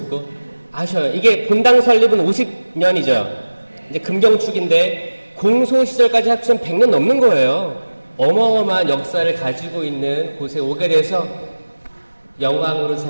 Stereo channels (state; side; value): inverted; both; correlation -1.00